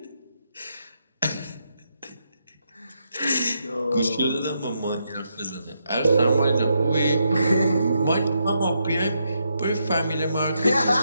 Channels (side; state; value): both; inverted; correlation -0.80